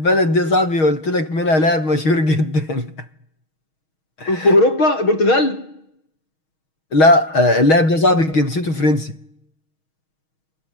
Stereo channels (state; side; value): late; right; 6.3 ms